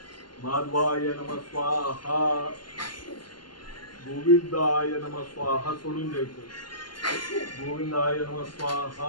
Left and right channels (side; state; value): right; late; 0.71 ms